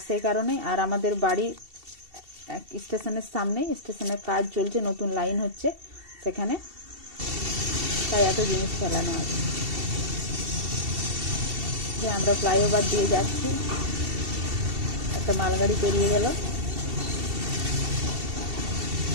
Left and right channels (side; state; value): left; late; 2.7 ms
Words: সেই কারণেই, আর আমাদের বাড়ি স্টেশনের সামনেই, স্টেশনের কাজ চলছে, নতুন লাইন হচ্ছে সেখানে, তাই এত জিনিস ফেলানো আছে। যে আমরা ফ্লাইওভার দিয়ে যাচ্ছি, একটা মালগাড়ি পেরিয়ে গেল।